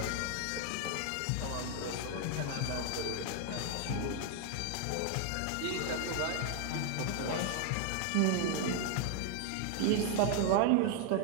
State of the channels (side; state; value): both; different; correlation 0.00